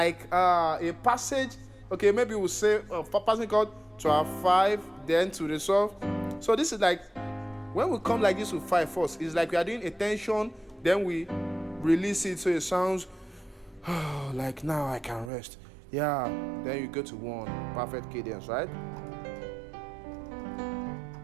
passage. Okay, maybe we'll say passing chord to our 5, then to resolve. So this is like when we come like this with 5 first, it's like we are doing a tension, then we release it so it sounds like now I can rest. Yeah, then you go to 1, perfect cadence, right?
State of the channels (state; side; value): drops out; left; at 15.3 s